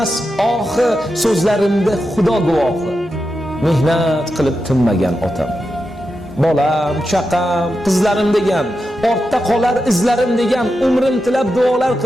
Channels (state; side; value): normal; both; correlation 0.89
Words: ohi, so'zlarimda xudo guvohi, mehnat qilib tinmagan otam. Bolam, chaqam, qizlarim degan, ortda qolar izlarim degan, umrim tilab duolar